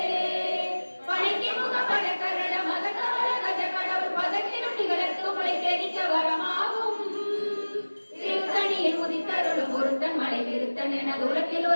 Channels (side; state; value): both; inverted; correlation -1.00